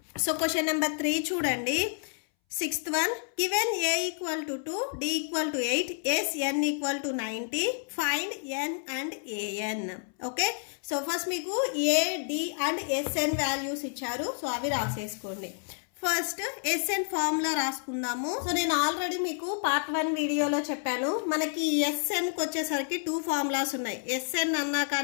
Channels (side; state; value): right; silent; 58 dB below the other